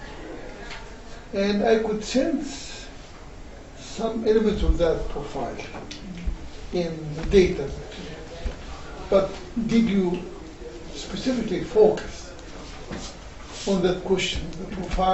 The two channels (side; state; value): both; identical; correlation 1.00